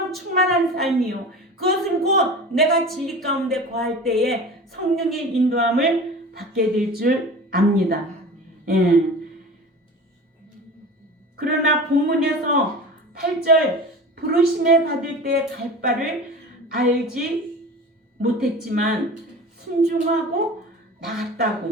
충만한 삶이요. 그것은 곧 내가 진리 가운데 거할 때에 성령의 인도함을 받게 될 줄 압니다. 예. 그러나 본문에서 8절 부르심에 받을 때 갈 바를 알지 못했지만 순종하고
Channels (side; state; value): both; normal; correlation 0.35